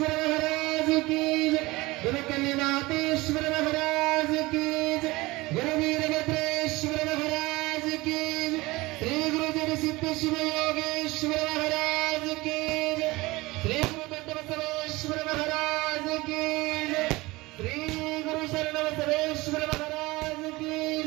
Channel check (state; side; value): quieter; left; 21.4 dB